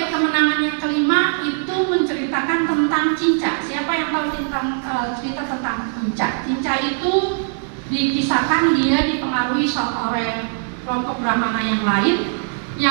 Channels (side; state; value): left; silent; 66 dB below the other